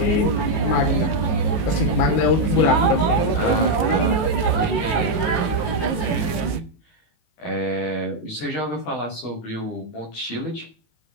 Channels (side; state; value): right; late; 19 ms